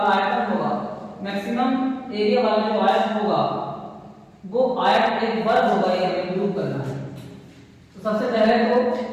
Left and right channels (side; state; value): both; identical; correlation 1.00